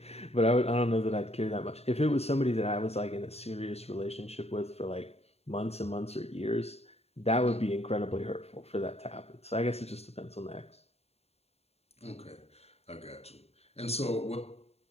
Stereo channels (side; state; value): right; late; 0.30 ms